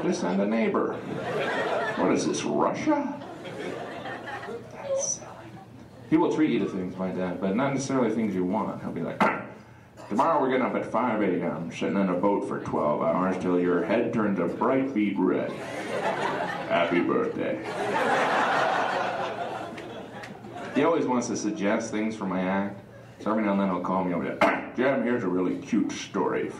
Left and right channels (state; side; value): identical; both; correlation 1.00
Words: to send a neighbor. What is this, Russia? That's silly. He will treat you to things, my dad, but not necessarily things you want. He'll be like, tomorrow we're getting up at 5 a.m., sitting in a boat for 12 hours till your head turns a bright beet red. Happy birthday. He always wants to suggest things for my act. So every now and then he'll call me over there. Jim, here's a really cute story